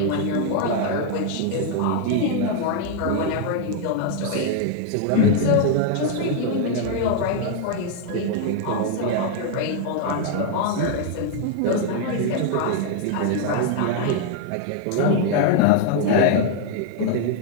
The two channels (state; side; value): different; both; correlation 0.00